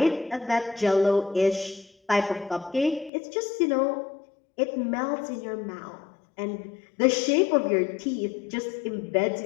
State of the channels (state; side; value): drops out; right; at 3.1 s